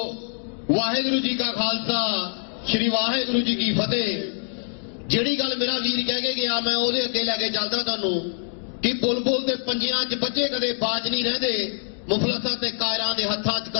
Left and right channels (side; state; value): right; silent; digital silence